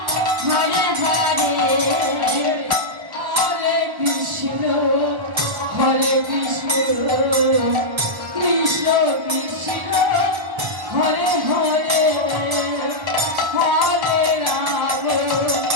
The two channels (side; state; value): left; late; 1.2 ms